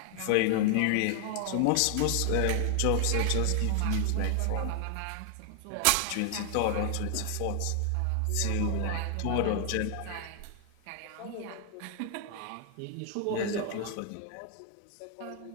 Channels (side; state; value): both; different; correlation 0.00